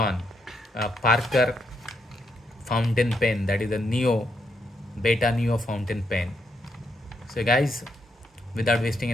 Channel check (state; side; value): normal; both; correlation 0.78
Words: a Parker fountain pen, that is a Neo Beta Neo fountain pen. So guys, without wasting